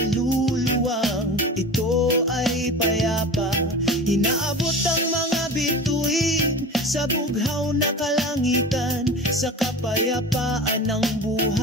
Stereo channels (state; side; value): normal; both; correlation 0.33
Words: ito ay payapa. Inaabot ang mga bituin sa bughaw na kalangitan, sa kapayapaan ng